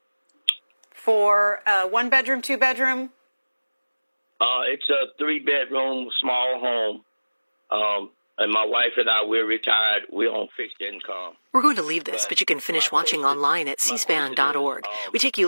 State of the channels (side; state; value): both; inverted; correlation -1.00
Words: For one bedroom, two bedroom? It's a 3-bedroom small home. And my wife and I, we're retired. We're on fixed income. We're going to leave this, but you can finish watching online at cspan.org. We take you